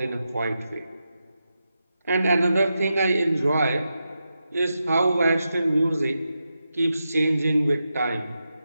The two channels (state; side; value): inverted; both; correlation -0.88